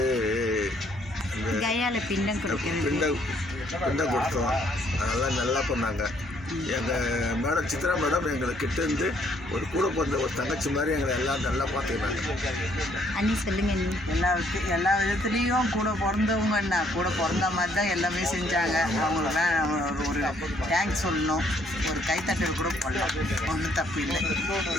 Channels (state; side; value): normal; both; correlation 0.66